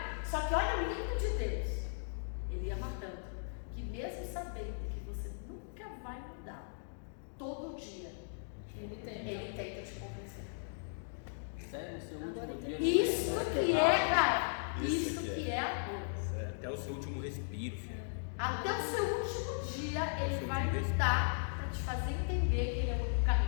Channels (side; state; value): right; silent; digital silence